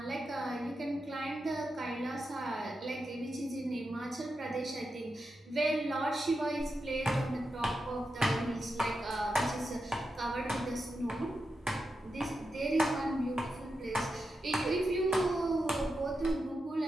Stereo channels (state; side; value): normal; both; correlation 0.88